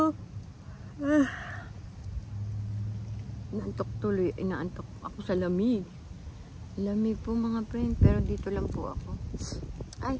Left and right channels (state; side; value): identical; both; correlation 1.00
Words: Inaantok tuloy. Inaantok ako sa lamig. Lamig po mga friend, pero dito lang po ako. Ay,